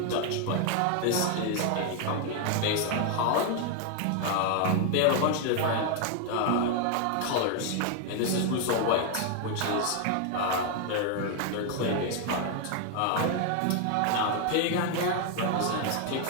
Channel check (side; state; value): both; different; correlation 0.01